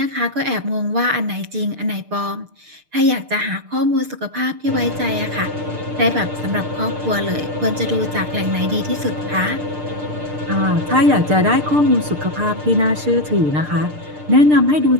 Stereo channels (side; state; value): left; late; 6.7 ms